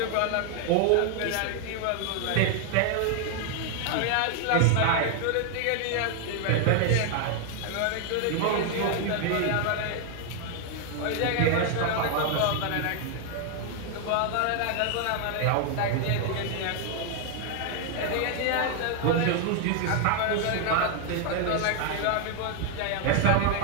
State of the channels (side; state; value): both; different; correlation 0.00